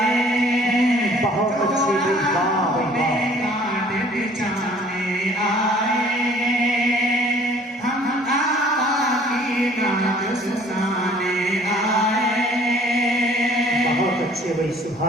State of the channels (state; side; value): normal; both; correlation 0.55